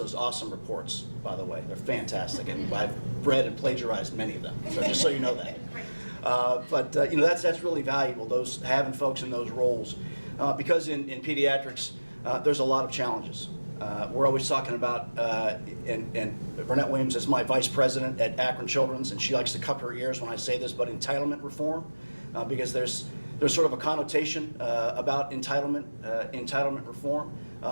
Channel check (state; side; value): inverted; both; correlation -1.00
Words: awesome reports? By the way, they're fantastic, and I've read and plagiarized many of them, so just so you know that. But you know, that's really valuable, those having folks in those roles, because in pediatrics there's a lot of challenges. We're always talking about, and Burnett Williams is my vice president at Akron Children's, and she likes to cup her ears when I say this, but entitlement reform, because there's there's sort of a connotation about entitlement reform.